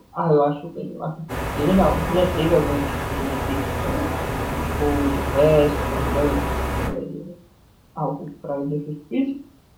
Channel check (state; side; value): identical; both; correlation 1.00